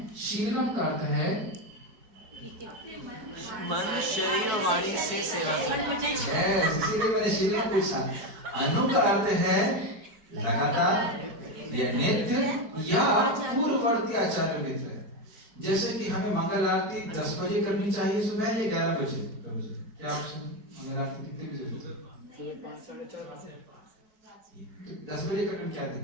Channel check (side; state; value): left; late; 4.6 ms